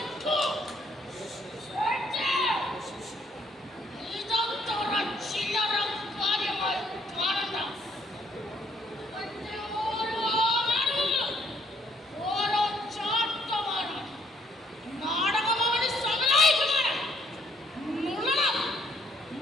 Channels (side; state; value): both; normal; correlation 0.67